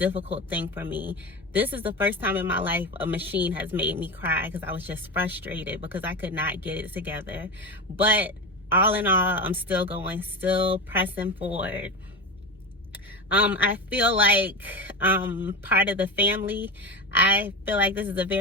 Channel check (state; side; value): normal; both; correlation 0.22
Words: thing for me. This is the first time in my life a machine has made me cry because I was just frustrated because I could not get it together. But all in all, I'm still going, still pressing forward. I feel like part of the family. I feel like this is a